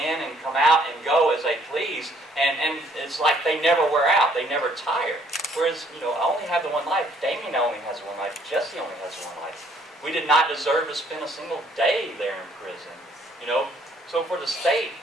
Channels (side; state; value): both; normal; correlation 0.64